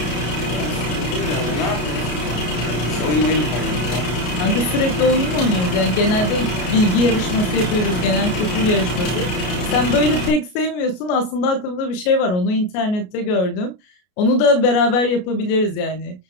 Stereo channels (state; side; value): late; right; 33 ms